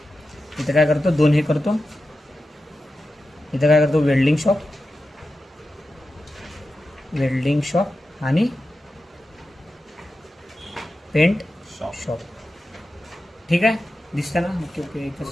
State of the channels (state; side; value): normal; both; correlation 0.92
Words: इथं काय करतो, 2 हे करतो. इथं काय करतो, वेल्डिंग शॉप आणि पेंट शॉप. शॉप. ठीक आहे, दिसतं ना? ओके ओके, एकच जस्ट